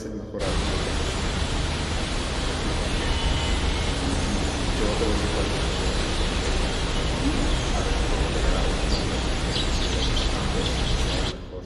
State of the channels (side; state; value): both; identical; correlation 1.00